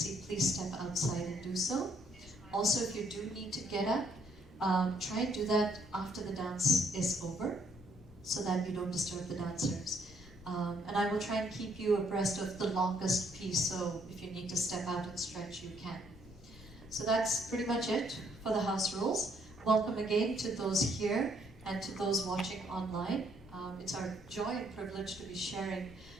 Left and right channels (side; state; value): both; normal; correlation 0.68